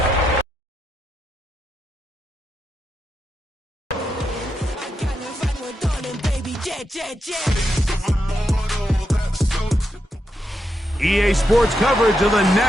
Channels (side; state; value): both; normal; correlation 0.84